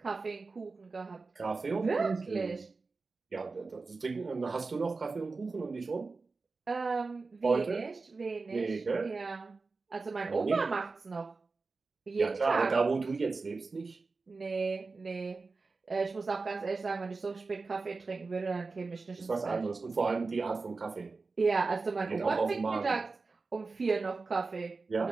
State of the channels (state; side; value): quieter; left; 4.0 dB